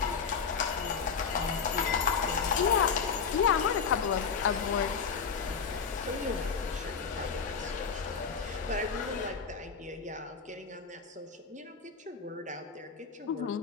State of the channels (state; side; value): quieter; right; 5.9 dB